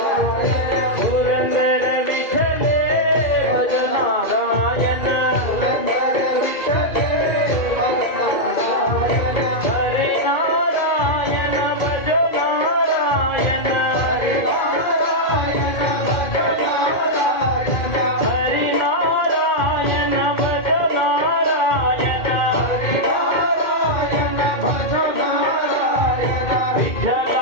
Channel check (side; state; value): right; late; 2.4 ms